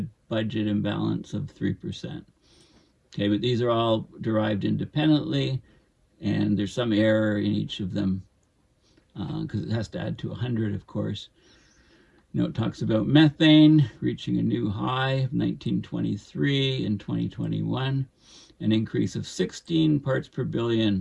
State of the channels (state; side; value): identical; both; correlation 1.00